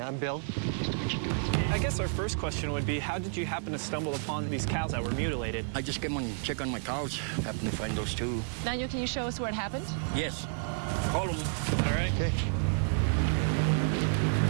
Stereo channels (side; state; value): left; silent; digital silence